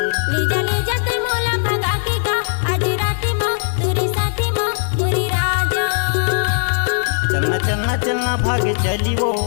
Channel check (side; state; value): right; silent; digital silence